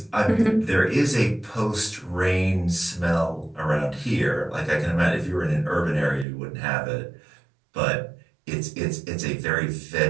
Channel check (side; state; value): left; drops out; at 6.2 s